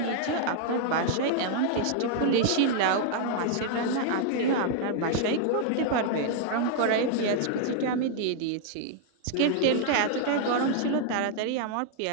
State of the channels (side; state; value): both; different; correlation 0.00